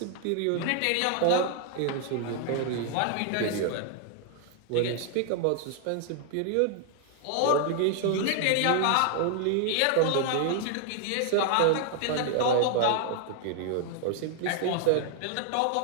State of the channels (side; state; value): both; different; correlation 0.00